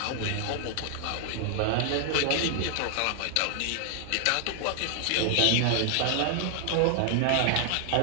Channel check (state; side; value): different; both; correlation 0.00